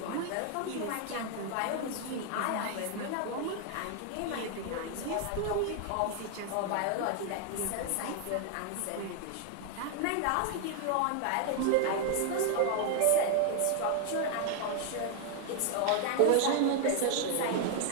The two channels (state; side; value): different; both; correlation 0.00